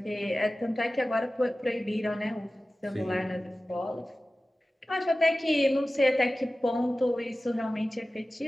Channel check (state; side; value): normal; both; correlation 0.96